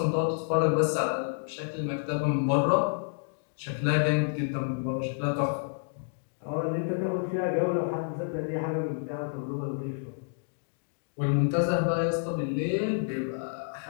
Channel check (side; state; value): right; silent; digital silence